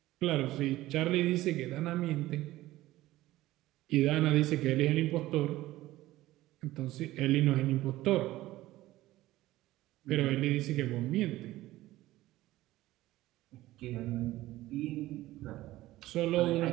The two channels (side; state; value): left; quieter; 16.5 dB